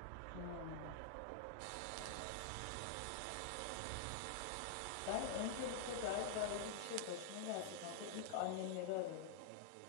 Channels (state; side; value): different; both; correlation -0.01